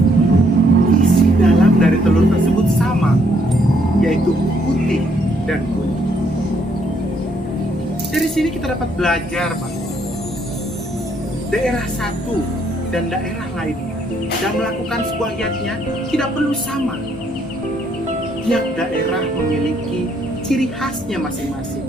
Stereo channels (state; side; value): normal; both; correlation 0.70